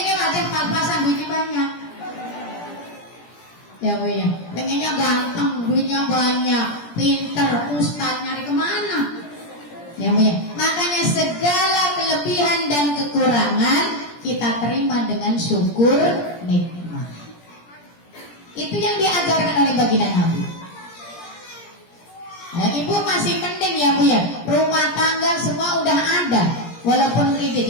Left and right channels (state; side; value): late; right; 17 ms